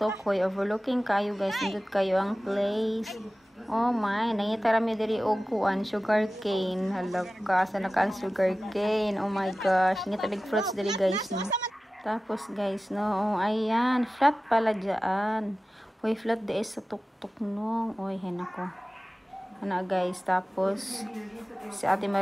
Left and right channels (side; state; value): both; normal; correlation 0.96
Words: Hoy, overlooking kayo guys. Nandito kayo ang place. Oh my, nangita rami diri og kuan sugar cane. Halaka, sa nakaan sugar cane. Oh my gosh, ngita big fruits diri guys no. Tapos guys no, oh, ayan, flat pala diyan. Hoy, flat di sa tuktok no. Oy, henako. Ana guys, tapos si Ate